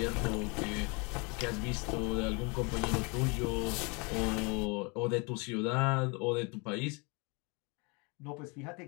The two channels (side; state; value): right; quieter; 30.6 dB